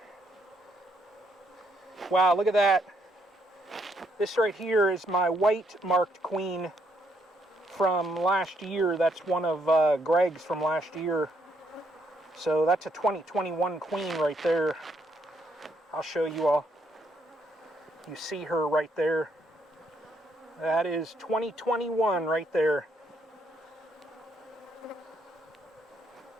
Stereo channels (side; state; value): both; normal; correlation 0.73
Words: Wow, look at that. This right here is my white marked queen from last year. That's one of Greg's from last year. So that's a 2021 queen right there. I'll show you all. You see her right there. That is 2021 right there.